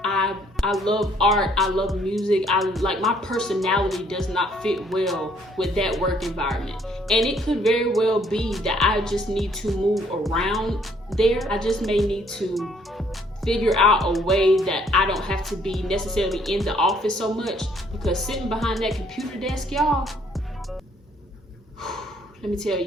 I love art, I love music, my personality does not fit well with that work environment. And it could very well be that I just need to move around there. I just may need to figure out a way that I don't have to be necessarily in the office so much, because sitting behind that computer desk, y'all, let me tell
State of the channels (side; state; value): both; normal; correlation 0.64